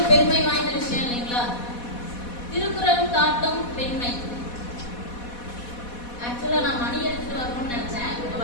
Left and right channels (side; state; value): right; late; 4.1 ms